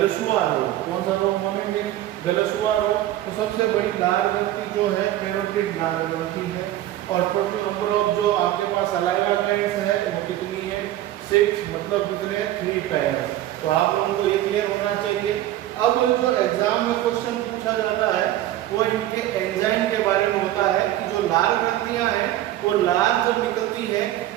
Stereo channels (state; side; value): quieter; left; 13.9 dB